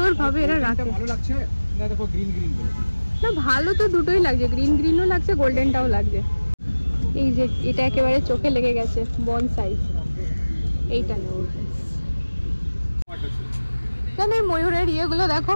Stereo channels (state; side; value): inverted; both; correlation -1.00